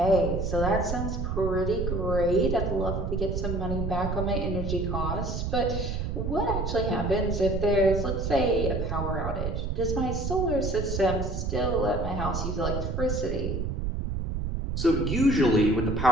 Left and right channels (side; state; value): right; noise; rumble, 2 dB below the sound